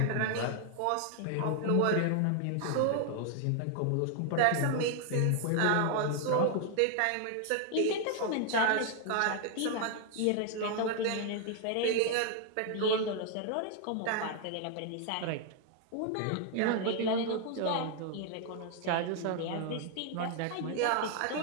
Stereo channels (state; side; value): different; both; correlation 0.00